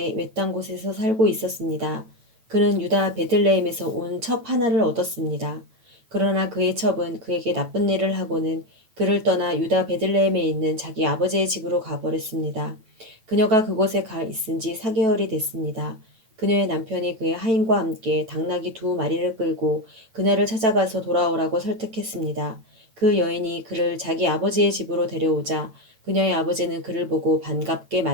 외딴 곳에서 살고 있었습니다. 그는 유다 베들레헴에서 온 첩 하나를 얻었습니다. 그러나 그의 첩은 그에게 나쁜 일을 하고는 그를 떠나 유다 베들레헴에 있는 자기 아버지의 집으로 가버렸습니다. 그녀가 그곳에 가 있은 지 4개월이 됐습니다. 그녀의 남편이 그의 하인과 함께 당나귀 2마리를 끌고 그녀를 찾아가서 돌아오라고 설득했습니다. 그 여인이 그를 자기 아버지의 집으로 데려오자 그녀의 아버지는 그를 보고 반갑게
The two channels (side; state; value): left; late; 9.1 ms